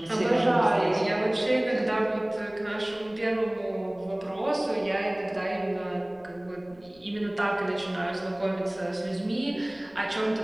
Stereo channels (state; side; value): noise; left; rumble, 27 dB below the sound